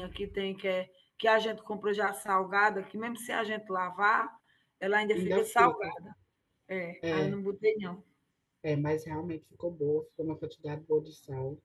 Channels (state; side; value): identical; both; correlation 1.00